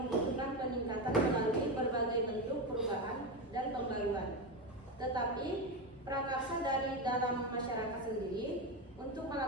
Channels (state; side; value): normal; both; correlation 0.15